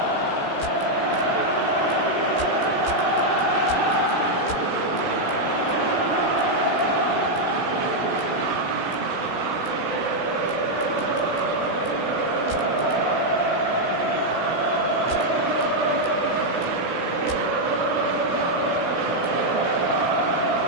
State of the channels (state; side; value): late; right; 16 ms